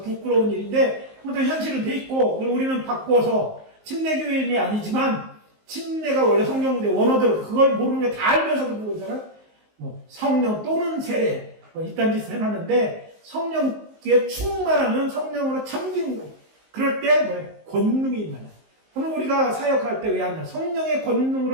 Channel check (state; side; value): late; left; 19 ms